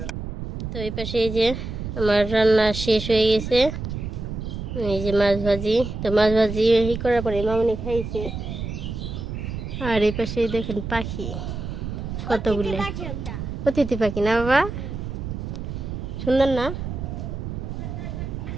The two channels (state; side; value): noise; right; rumble, 6 dB below the sound